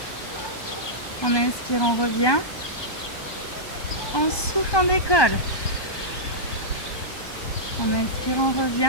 On inspire, on revient. On souffle, on décolle. On inspire, on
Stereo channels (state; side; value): late; right; 1.2 ms